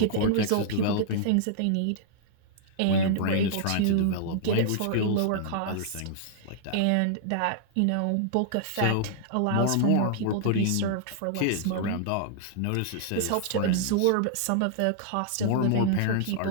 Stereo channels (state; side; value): different; both; correlation -0.01